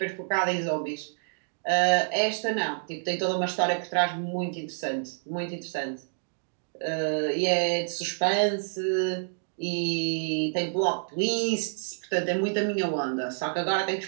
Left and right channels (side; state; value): left; silent; digital silence